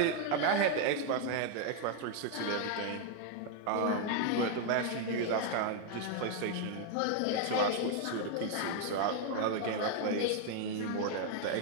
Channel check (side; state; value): both; different; correlation 0.00